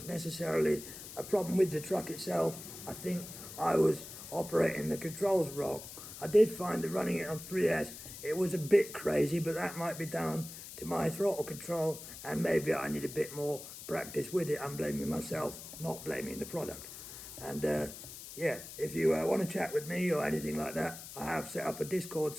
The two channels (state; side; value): noise; left; hiss, 12 dB below the sound